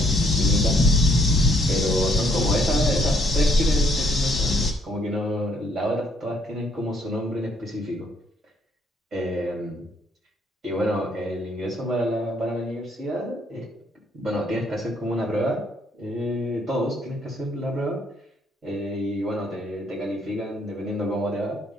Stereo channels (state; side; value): normal; both; correlation 0.68